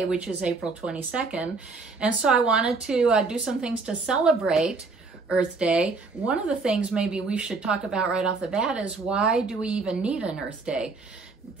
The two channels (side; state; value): left; quieter; 4.0 dB